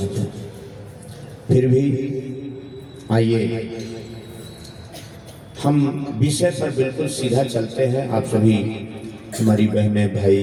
हैं। फिर भी आइए हम विषय पर बिल्कुल सीधा चलते हैं। आप सभी हमारी बहनें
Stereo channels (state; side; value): identical; both; correlation 1.00